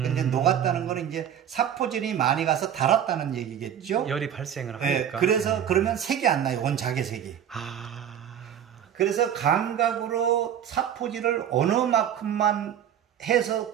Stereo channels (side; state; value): left; quieter; 9.5 dB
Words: 녹았다는 거는 이제 사포질이 많이 가서 달았다는 얘기겠죠. 열이 발생을 네, 하니까. 그래서 그러면 색이 안 나요. 원 자개색이. 그래서 감각으로 사포질을 어느 만큼만 해서